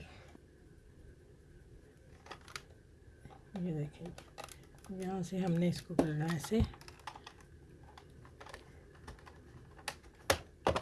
ये देखिए, यहाँ से हमने इसको करना है ऐसे,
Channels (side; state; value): both; identical; correlation 1.00